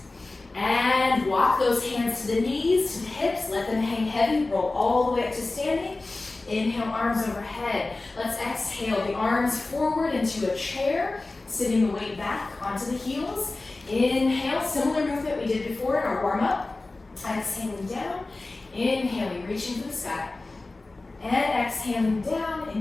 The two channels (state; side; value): quieter; right; 3.2 dB